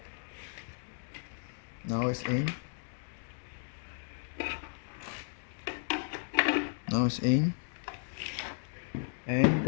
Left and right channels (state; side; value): silent; right; digital silence